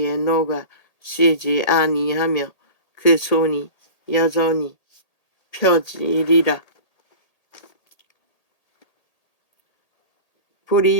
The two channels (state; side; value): late; right; 1.8 ms